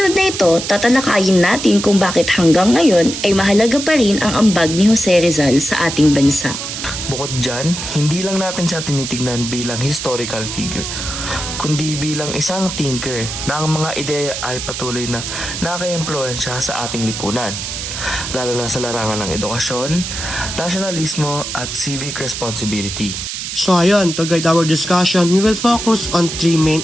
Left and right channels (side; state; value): right; noise; hiss, 6 dB below the sound